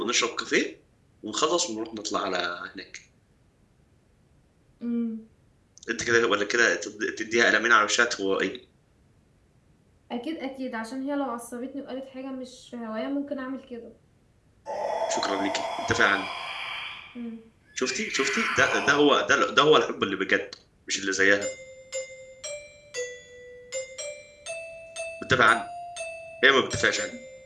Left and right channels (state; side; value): identical; both; correlation 1.00